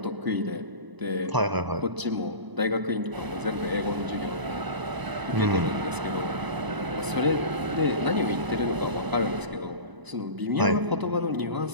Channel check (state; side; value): late; left; 1.0 ms